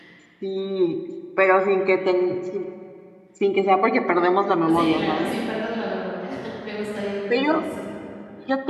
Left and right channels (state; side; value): identical; both; correlation 1.00